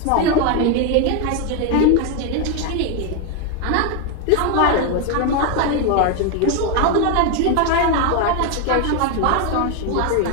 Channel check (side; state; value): both; different; correlation 0.01